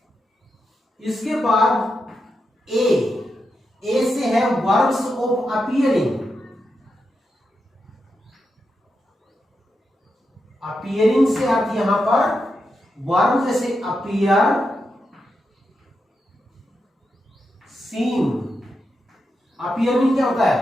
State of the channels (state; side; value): normal; both; correlation 0.86